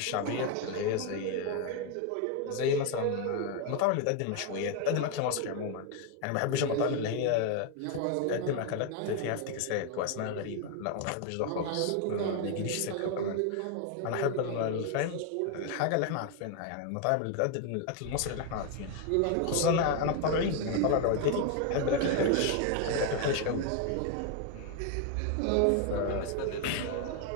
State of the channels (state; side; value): different; both; correlation 0.01